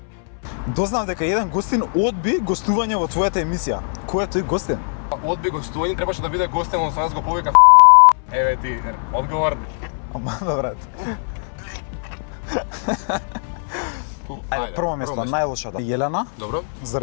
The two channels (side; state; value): right; silent; 65 dB below the other